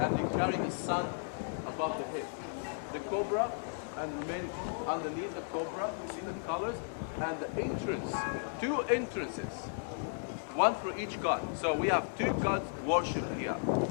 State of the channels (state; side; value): silent; right; digital silence